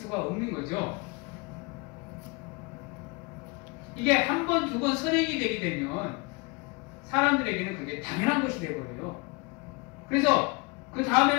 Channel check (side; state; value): right; quieter; 27.8 dB